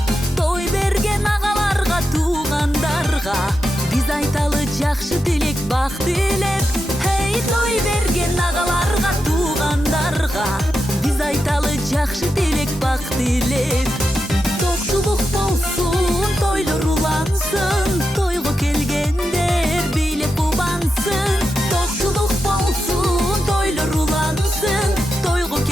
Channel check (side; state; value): both; normal; correlation 0.88